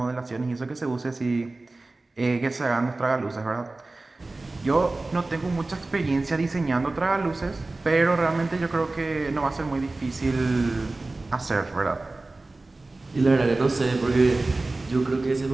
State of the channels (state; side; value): quieter; left; 3.1 dB